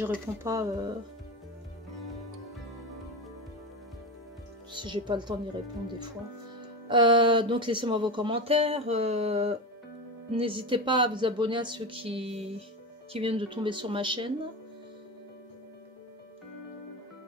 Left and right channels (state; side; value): normal; both; correlation 0.21